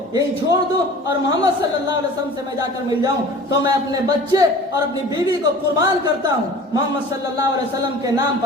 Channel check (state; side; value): normal; both; correlation 0.42